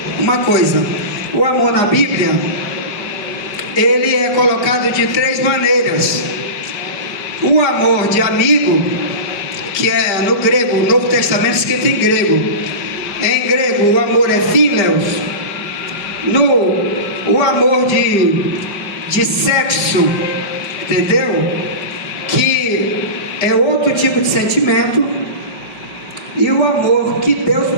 uma coisa: o amor na Bíblia, ele é colocado de três maneiras. O amor de amigo, que é no grego, o Novo Testamento escrito em grego. Em grego o amor é phileos. O amor de sexo, entendeu? Que é outro tipo de sentimento. E o amor que Deus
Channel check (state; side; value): late; right; 4.9 ms